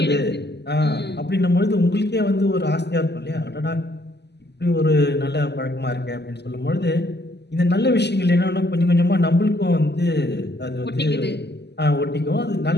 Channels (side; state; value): right; late; 0.49 ms